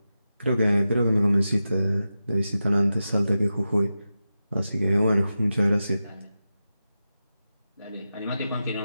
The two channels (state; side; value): inverted; both; correlation -0.91